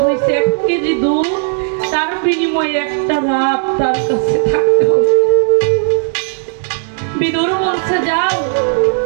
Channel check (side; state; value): left; silent; 64 dB below the other